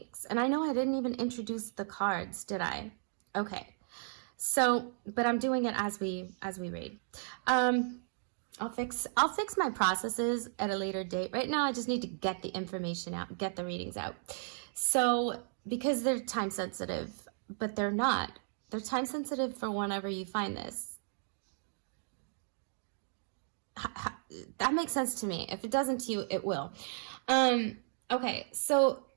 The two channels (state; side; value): silent; left; digital silence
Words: And I know I didn't even introduce the cards, did I? Okay. So, but I'm doing it as we read. I'll fix my processes at a later date. Right now, I just need to get the information out, get the readings out. So, because they're time sensitive, but they're not. They're time sensitive for whenever you find this. That makes sense to me. If it doesn't to you, it will. Okay, so